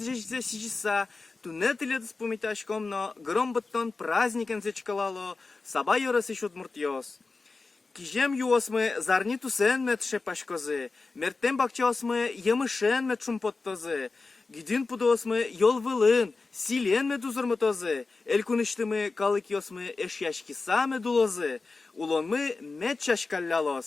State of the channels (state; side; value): quieter; right; 3.9 dB